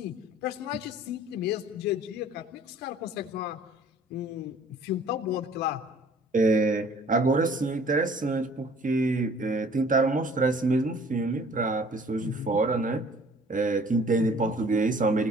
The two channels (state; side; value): normal; both; correlation 0.53